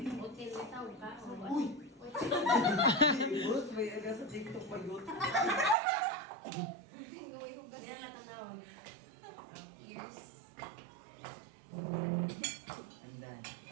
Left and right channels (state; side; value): drops out; left; at 5.8 s